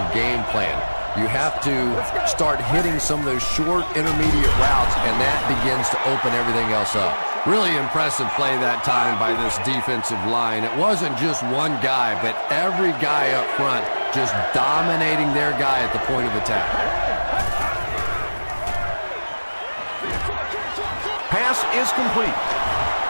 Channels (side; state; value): both; inverted; correlation -1.00